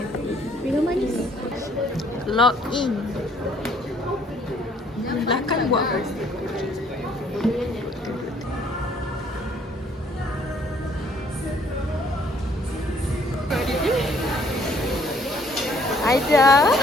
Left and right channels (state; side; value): normal; both; correlation 0.62